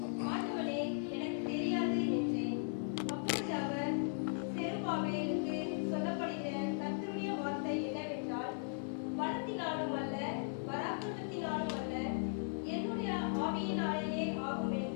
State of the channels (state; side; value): silent; right; digital silence